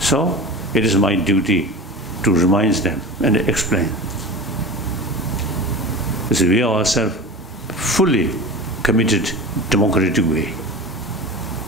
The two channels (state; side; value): normal; both; correlation 0.32